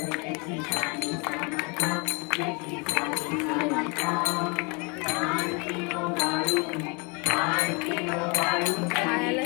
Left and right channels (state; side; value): quieter; right; 31.2 dB